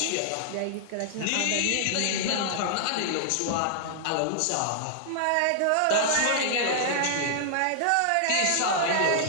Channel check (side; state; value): both; different; correlation -0.01